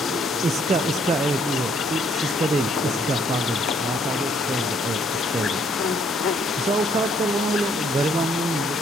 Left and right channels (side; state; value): both; normal; correlation 0.66